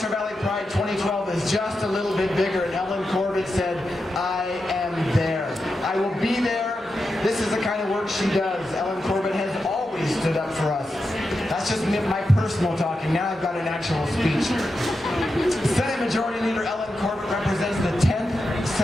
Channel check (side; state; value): both; normal; correlation 0.89